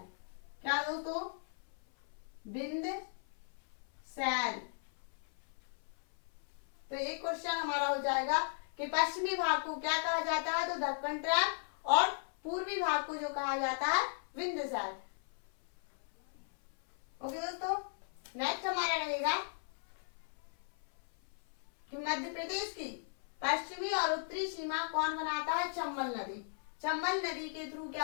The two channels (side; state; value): right; silent; 53 dB below the other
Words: क्या दोस्तों? विंध्य। तो एक क्वेश्चन हमारा हो जाएगा कि पश्चिमी भाग को क्या कहा जाता है? तो दक्कन ट्रैम, और पूर्वी भाग को जो कहा जाता है विंध्य। ओके दोस्तों, नेक्स्ट हमारा रहेगा कि मध्य प्रदेश की पश्चिमी और उत्तरी सीमा कौन बनाता है? चंबल नदी। चंबल नदी के थ्रू